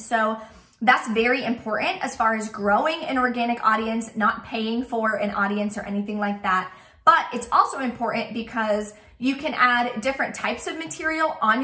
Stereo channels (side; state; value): both; identical; correlation 1.00